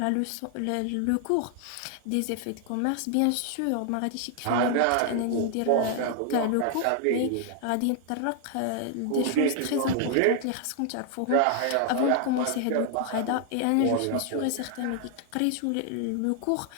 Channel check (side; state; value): both; different; correlation 0.00